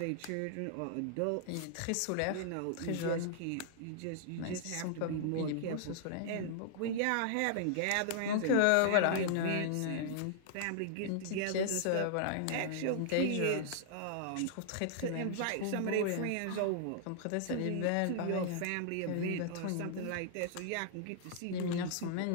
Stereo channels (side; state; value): both; different; correlation -0.01